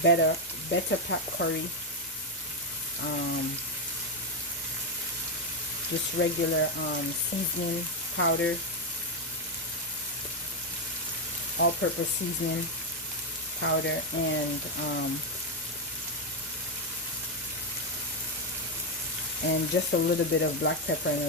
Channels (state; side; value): normal; both; correlation 0.04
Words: better pack curry, just regular seasoning powder, all-purpose seasoning powder, and just a little bit of black pepper and a